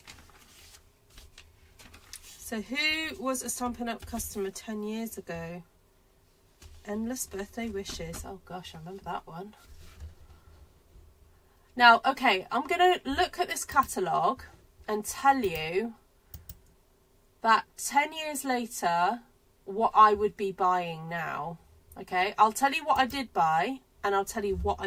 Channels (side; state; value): both; identical; correlation 1.00